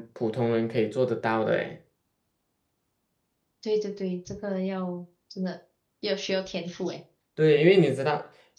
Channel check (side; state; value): both; identical; correlation 1.00